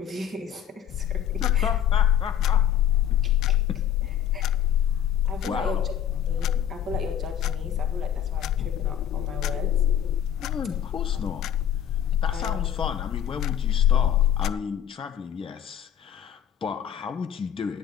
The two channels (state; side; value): quieter; right; 10.0 dB